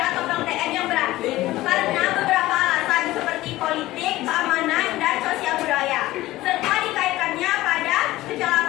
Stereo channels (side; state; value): right; quieter; 17.0 dB